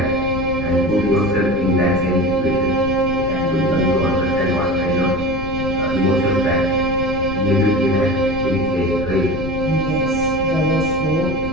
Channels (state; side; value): noise; left; rumble, 8 dB below the sound